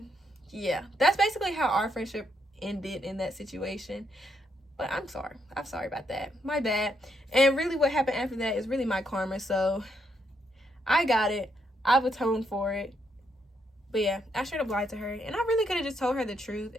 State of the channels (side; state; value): both; normal; correlation 0.77